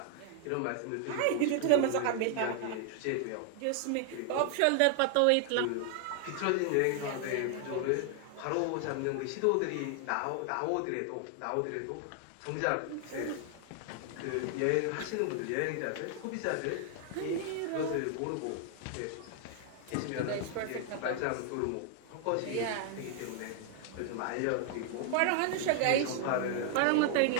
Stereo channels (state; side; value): different; both; correlation 0.00